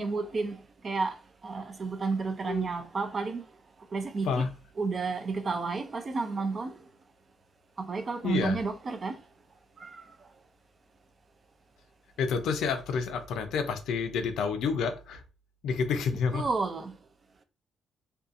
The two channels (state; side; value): normal; both; correlation 0.73